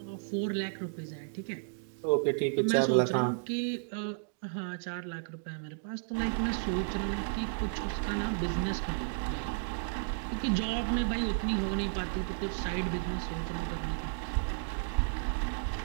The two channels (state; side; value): silent; left; digital silence